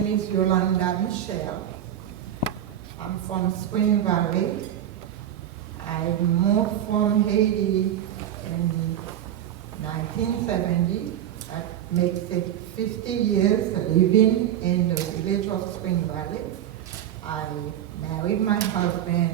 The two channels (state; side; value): quieter; left; 10.8 dB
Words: is Yolanda Michelle. I'm from Spring Valley. I moved from Haiti in 1970. That makes it 50 years living in the village of Spring Valley. I married my husband,